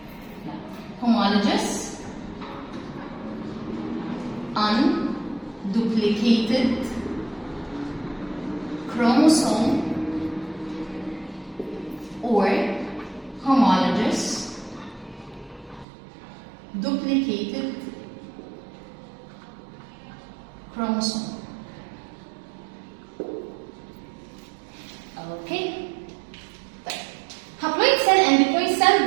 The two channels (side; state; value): left; drops out; at 15.9 s